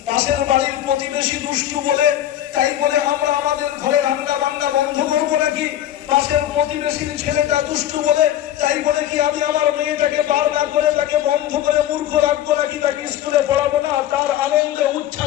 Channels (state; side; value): quieter; right; 12.1 dB